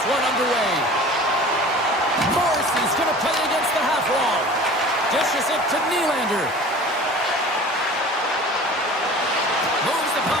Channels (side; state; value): both; normal; correlation 0.41